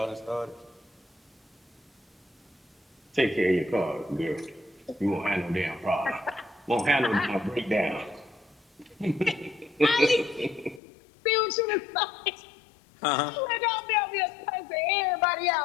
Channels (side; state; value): right; drops out; at 10.8 s